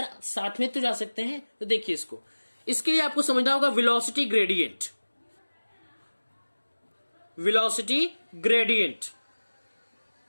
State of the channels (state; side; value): inverted; both; correlation -1.00